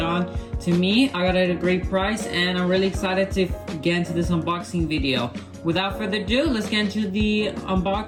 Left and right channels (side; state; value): both; identical; correlation 1.00